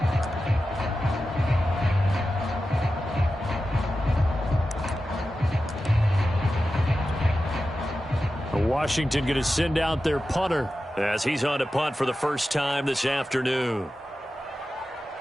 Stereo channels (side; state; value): both; normal; correlation 0.92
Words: Washington going to send out their punter as he's on to punt for the first time this afternoon.